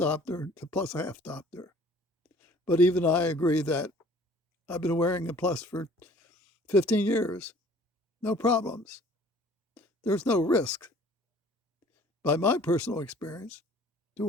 to plus a half diopter. But even I agree that I've been wearing a plus for 15 years. No problems. There's no risk, by my personal experience, to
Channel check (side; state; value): both; normal; correlation 0.53